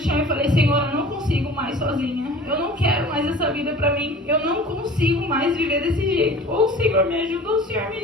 e falei, Senhor, eu não consigo mais sozinha. Eu não quero mais essa vida pra mim. Eu não consigo mais viver desse jeito. Ou o Senhor me ajuda, ou o Senhor me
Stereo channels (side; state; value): both; normal; correlation 0.43